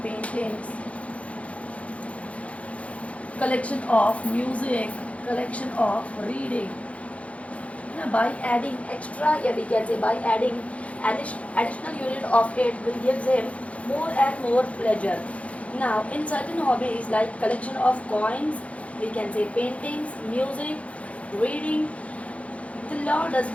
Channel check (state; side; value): late; right; 0.064 ms